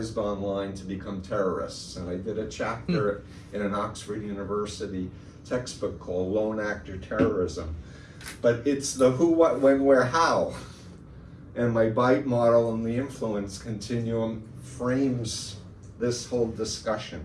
online to become terrorists. And I did a chapter in an Oxford University textbook called Lone Actor Terrorism. But it's the who, what, when, where, how. And my BITE model and the influence continuum frames this whole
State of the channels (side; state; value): both; identical; correlation 1.00